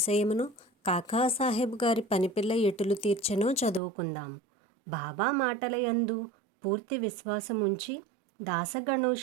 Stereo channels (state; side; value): drops out; left; at 3.8 s